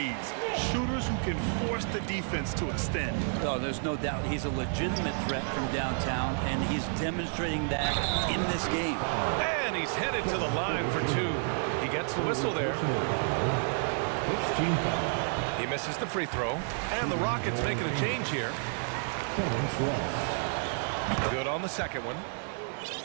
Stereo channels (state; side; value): silent; left; 58 dB below the other